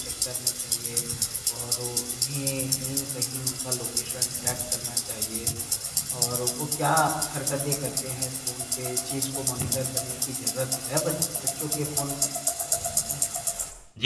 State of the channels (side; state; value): both; identical; correlation 1.00